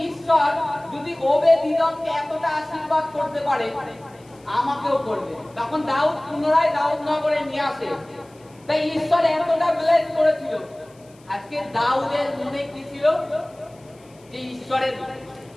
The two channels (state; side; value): noise; left; hiss, 30 dB below the sound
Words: ঈশ্বর যদি ওবেদ ইদোমকে এতটা আশীর্বাদ করতে পারে আমাকেও করবে। তখন দাউদ পুনরায় দাউদ নগরে নিয়ে আসে। তাই ঈশ্বর এতটা ব্লেস করেছিল, আজকে দাউদের মনে কি ছিল, যে ঈশ্বরের